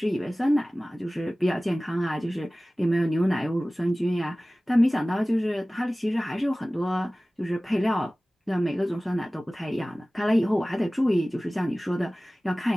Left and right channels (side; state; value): both; normal; correlation 0.98